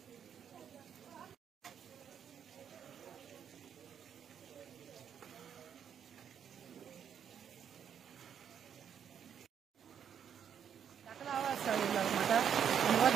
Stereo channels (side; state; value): left; quieter; 8.3 dB